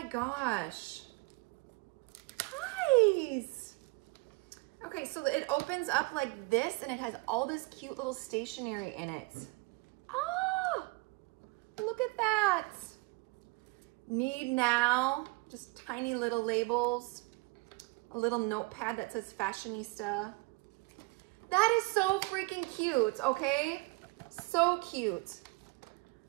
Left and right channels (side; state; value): left; quieter; 25.1 dB